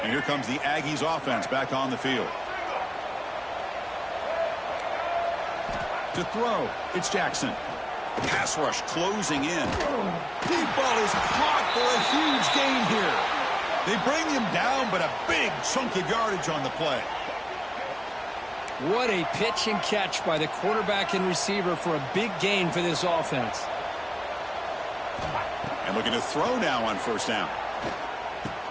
And here comes the Aggies offense back on the field. To throw, it's Jackson. Pass rush closing in. Deep ball is caught for a huge gain here. They bring him down, but a big chunk of yardage on the play. What a pitch and catch by the quarterback and receiver for a big gain for this offense. And Looking to throw now on first down.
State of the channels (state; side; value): identical; both; correlation 1.00